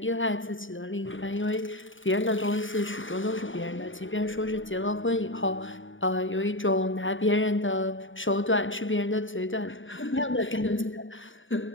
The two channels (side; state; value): right; late; 0.57 ms